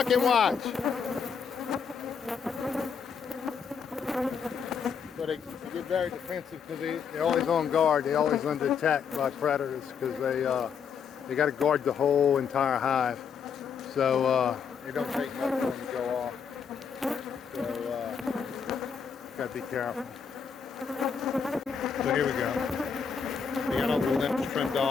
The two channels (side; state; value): right; quieter; 6.7 dB